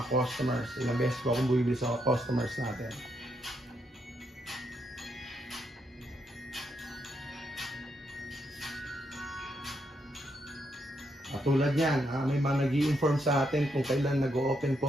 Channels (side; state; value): both; normal; correlation 0.78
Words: customers. Ilang beses po akong bumibili sa customers natin. At tulad niyan, may mga nag-i-inform sa atin kung kailan nag-o-open po